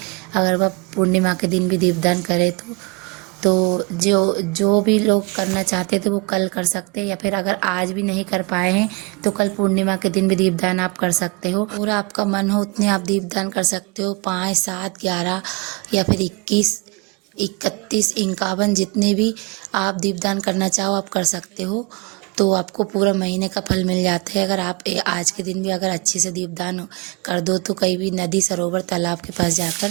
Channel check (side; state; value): left; quieter; 27.6 dB